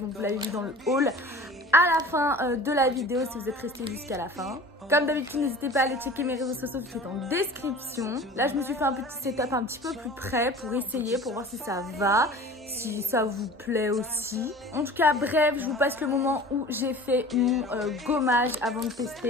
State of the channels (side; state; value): both; normal; correlation 0.41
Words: vous l'avez vu dans le haul à la fin de la vidéo si vous êtes resté jusqu'à la fin. Comme d'habitude, n'hésitez pas à aller checker mes réseaux sociaux qui sont en description. Là, je me suis fait un petit setup un petit peu plus près pour essayer, pour voir si ça va, si ça vous plaît aussi. En tout cas, bref, je vous passe le moment où j'ai fait mon gommage avant de